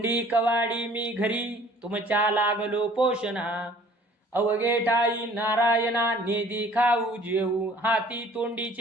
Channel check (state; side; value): normal; both; correlation 0.53